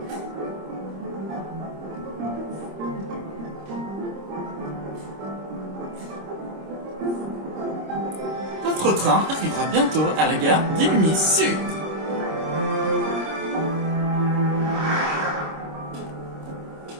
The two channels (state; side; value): late; left; 26 ms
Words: Notre train arrivera bientôt à la gare d'Illumis Sud.